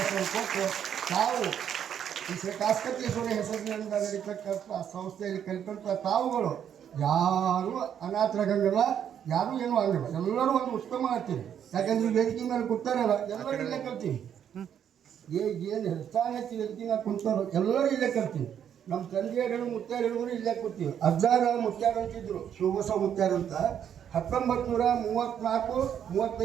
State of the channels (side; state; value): left; quieter; 9.0 dB